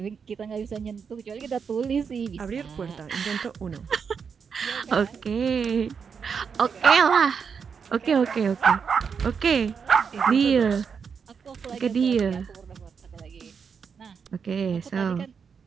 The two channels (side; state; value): left; quieter; 6.3 dB